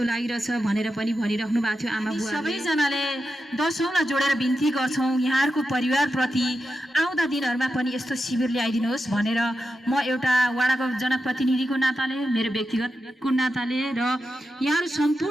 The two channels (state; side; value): normal; both; correlation 0.89